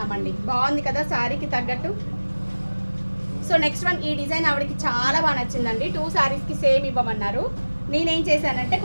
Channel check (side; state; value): both; inverted; correlation -1.00